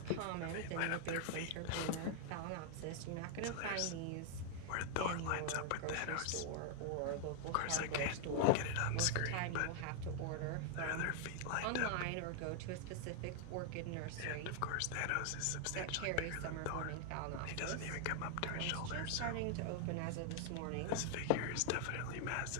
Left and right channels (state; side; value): different; both; correlation 0.00